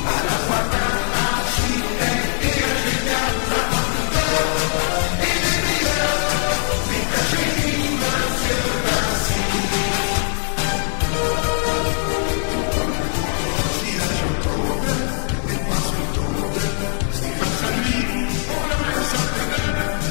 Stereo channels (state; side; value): silent; right; digital silence